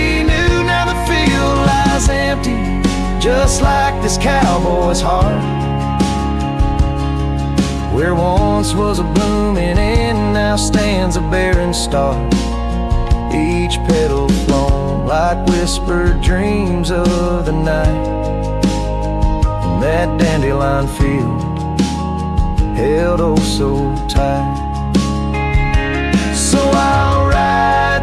knew. Now the field lies empty, just like this cowboy's heart, where once was a blooming inn, now stands a barren star. Each petal flown like whispered dreams of the night, and that dandelion field held oh so tight. So I'll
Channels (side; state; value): both; identical; correlation 1.00